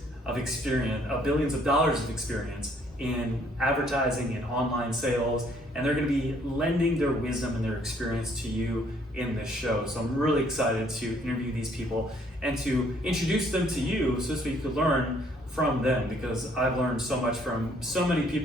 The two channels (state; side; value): normal; both; correlation 0.64